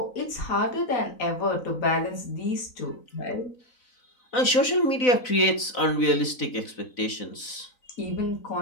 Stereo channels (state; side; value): late; right; 4.0 ms